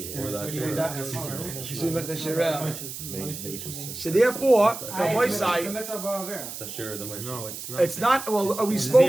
So therefore, the boy It's a side. mitzvah ba'avera. It's a share of the money. No, it's not. It's not. Well, we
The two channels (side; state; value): right; noise; hiss, 9 dB below the sound